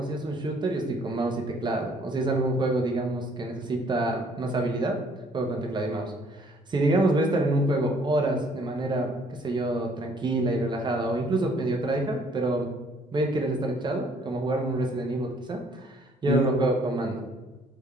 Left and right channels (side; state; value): both; normal; correlation 0.62